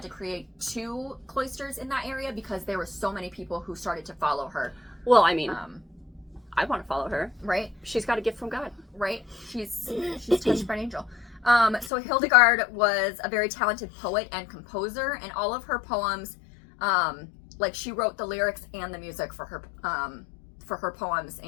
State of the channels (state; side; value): drops out; right; at 11.9 s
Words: to create 2 cloisters in that area because there were so many people who started to follow her. Well, I mean, I want to follow her. Right? She's got a gift from God. Right? She's touched by an angel. So Hildegard was a very talented poet and composer, and all of her poems, she wrote the lyrics and the music for her poems,